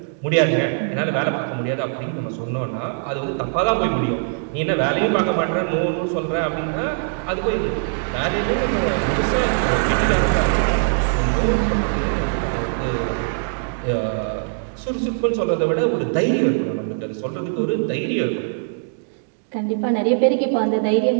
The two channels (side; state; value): left; silent; digital silence